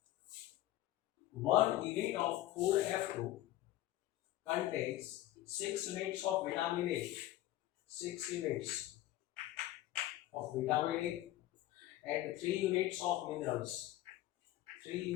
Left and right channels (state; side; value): quieter; right; 15.0 dB